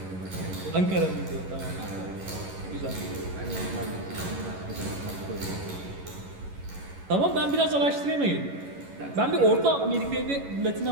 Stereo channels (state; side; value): late; left; 11 ms